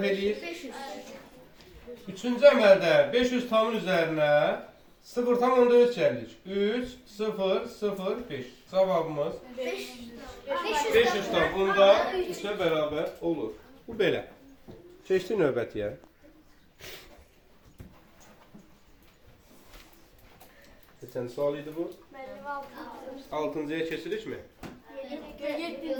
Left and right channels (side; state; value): both; identical; correlation 1.00